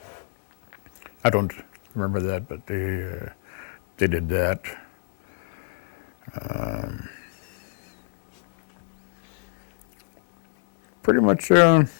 I don't remember that, but they did that. Pretty much,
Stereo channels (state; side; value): silent; right; digital silence